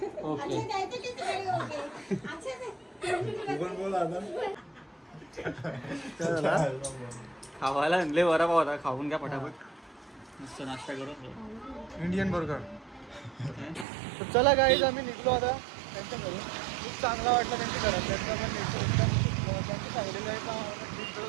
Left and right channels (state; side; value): drops out; left; at 13.9 s